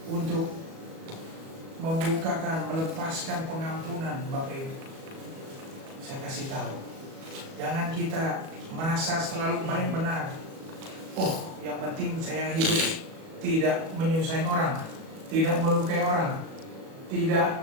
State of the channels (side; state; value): left; late; 37 ms